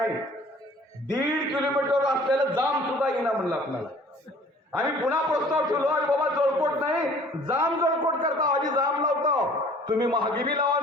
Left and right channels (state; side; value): normal; both; correlation 0.51